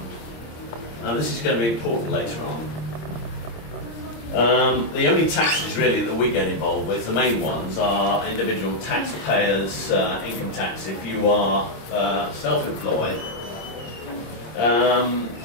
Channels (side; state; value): right; late; 26 ms